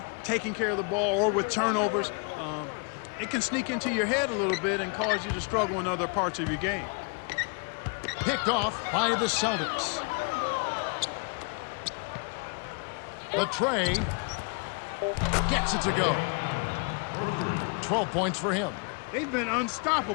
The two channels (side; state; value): right; quieter; 36.5 dB